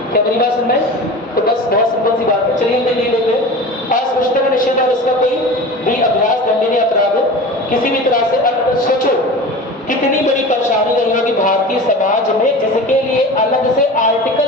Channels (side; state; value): both; normal; correlation 0.34